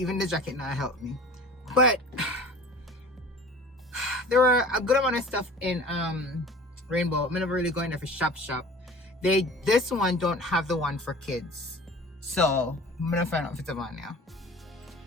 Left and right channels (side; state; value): both; normal; correlation 0.42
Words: the jacket now helped me. But there were a good amount of stuff in Rainbow. I'm never really going there for shop. This one don't have the one for kids. So I'm gonna find out if it's on now.